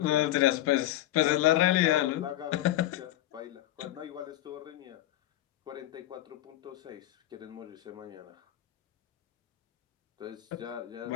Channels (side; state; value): right; quieter; 14.4 dB